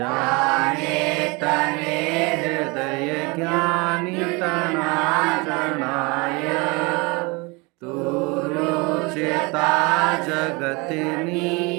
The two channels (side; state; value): left; quieter; 27.4 dB